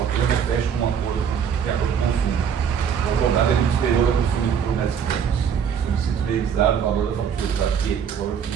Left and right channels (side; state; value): left; quieter; 7.6 dB